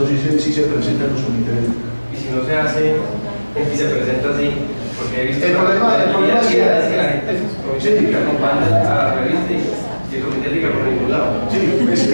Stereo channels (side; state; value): both; inverted; correlation -1.00